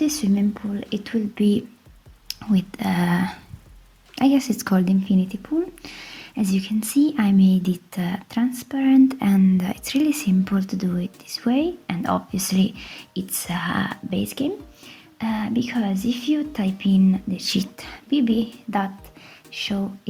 swimming pool, it will be with I guess it's called infinity pool. As you can see, I made it transparent, and it's really simple to do it this way. And obviously it's a base game, because if you type in the cheat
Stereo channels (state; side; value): identical; both; correlation 1.00